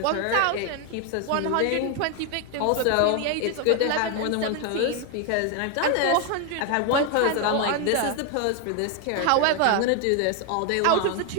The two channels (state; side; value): different; both; correlation 0.01